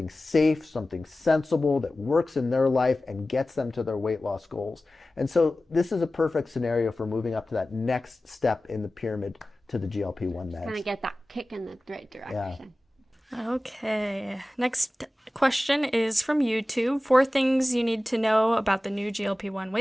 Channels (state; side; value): normal; both; correlation 0.96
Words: safe, something sensible that works in their life and gets them to their weight loss goals. And so this is a perfect scenario for moving up to that next step in the pyramid to the GLP-1 meds. Kind of get that kick in the right direction. Okay. Next question is from YouTube. 4 things you need to know about the new GLP-1